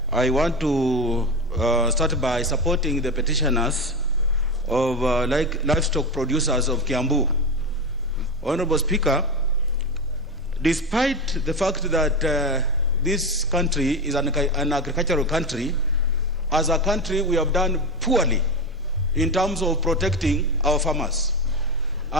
I want to start by supporting the petitioners of livestock producers of Kiambu. Honorable Speaker, despite the fact that this country is an agricultural country, as a country we have done poorly in terms of protecting our farmers.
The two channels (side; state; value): both; normal; correlation 0.18